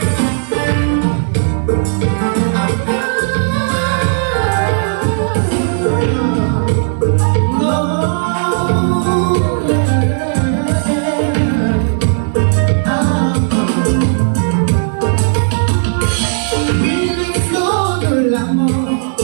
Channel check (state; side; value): silent; left; digital silence